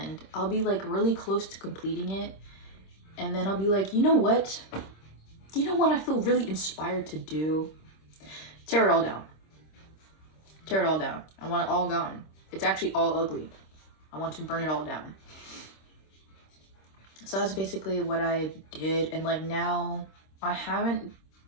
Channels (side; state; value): right; late; 26 ms